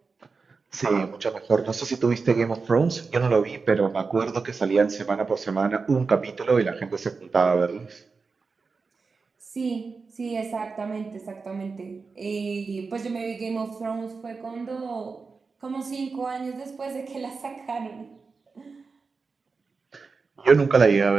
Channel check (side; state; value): left; quieter; 4.6 dB